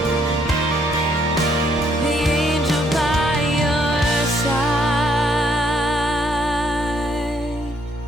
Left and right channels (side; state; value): both; normal; correlation 0.69